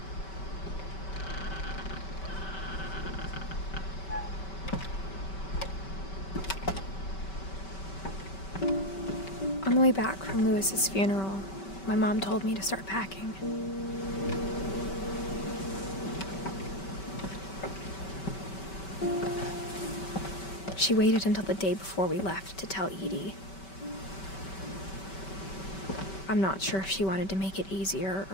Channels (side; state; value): right; late; 5.2 ms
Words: On the way back from Lewis's funeral, my mom told me to start packing. She waited until the day before we left to tell Edie. I'm not sure if she wanted to make it easier